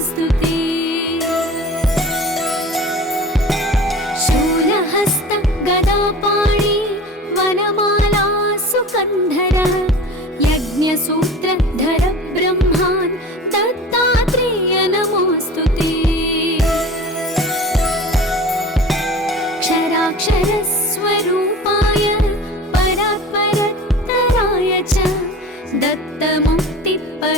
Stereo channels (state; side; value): normal; both; correlation 0.38